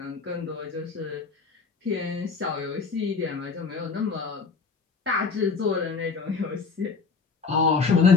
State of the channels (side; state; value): right; quieter; 4.9 dB